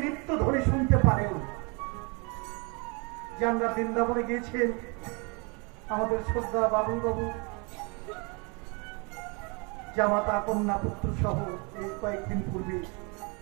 নিত্য ধ্বনি শুনতে পারেন। যে আমরা বৃন্দাবনে গিয়েছেন, আমাদের শ্রদ্ধা বাবু জামাতা কন্যা পুত্র সহ এই কয়েকদিন পূর্বে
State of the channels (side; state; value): left; quieter; 31.7 dB